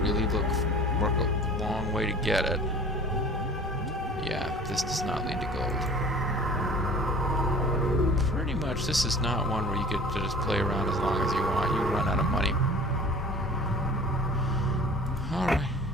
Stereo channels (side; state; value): both; normal; correlation 0.45